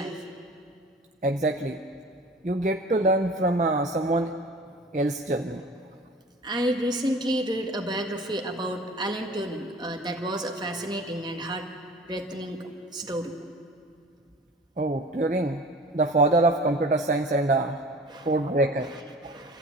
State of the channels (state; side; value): normal; both; correlation 0.42